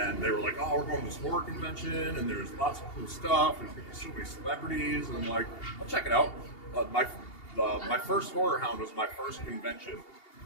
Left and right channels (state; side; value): late; right; 2.8 ms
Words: they were like, oh, we're going to this horror convention, and there's lots of cool stuff. There's going to be so many celebrities. And I'm like, I'll check it out. My first Horrorhound was my first convention